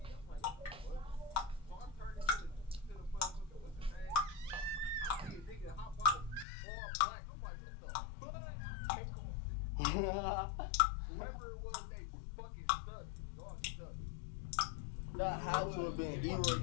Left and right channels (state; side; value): drops out; right; at 6.5 s